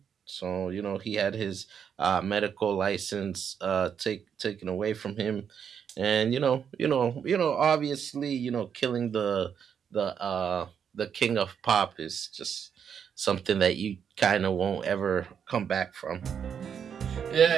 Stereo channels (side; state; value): left; quieter; 7.7 dB